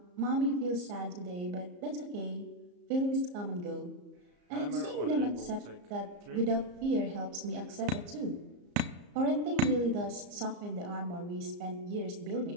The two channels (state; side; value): late; left; 34 ms